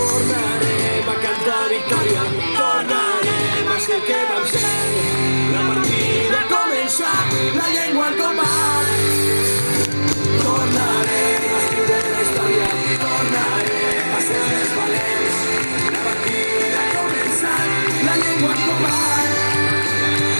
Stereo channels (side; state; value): both; inverted; correlation -1.00